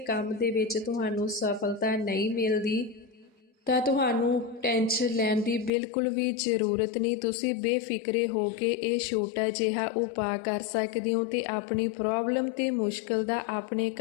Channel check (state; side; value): drops out; right; at 5.7 s